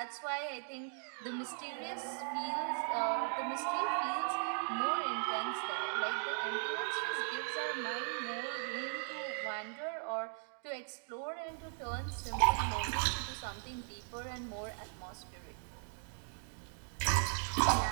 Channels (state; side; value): silent; left; 52 dB below the other